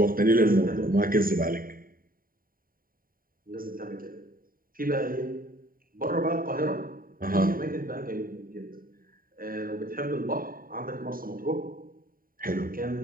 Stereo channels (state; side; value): late; left; 0.41 ms